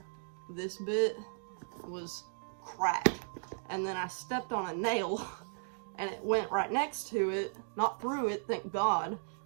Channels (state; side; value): silent; left; digital silence